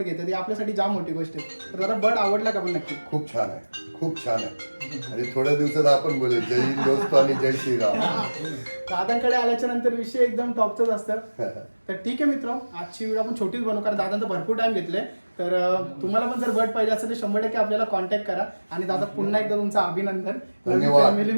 घेतात. ही आपल्यासाठी जाम मोठी गोष्ट आहे. तर दादा बर्ड आवडला का पण नक्की. खूप छान आहे खूप छान आहे. आणि थोड्या दिवसात आपण बोलू जय हिंद दोस्त आणि जय श्रीराम. दादांकडे आल्याच्या नंतर विषय एकदम टॉपचाच असतं. तर ठीक आहे मित्र आजची व्हिडिओ आपण छोटीच बनवू कारण दादांचं भरपूर टाइम घेतले. तर तुम्हाला पण जर बर्ड पाहिजे असेल तर 100% आपल्याला कॉन्टॅक्ट करा. आणि दादा पुन्हा एकदा तुमचं अभिनंदन. धन्यवाद फॅमिली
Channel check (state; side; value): inverted; both; correlation -1.00